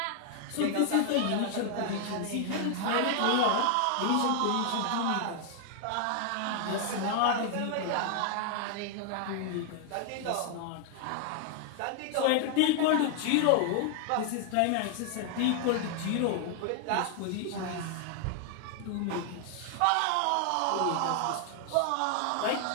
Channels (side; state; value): both; different; correlation 0.00